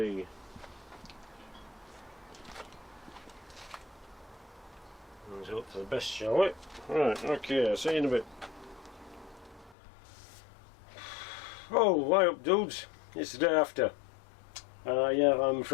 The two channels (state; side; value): drops out; right; at 9.8 s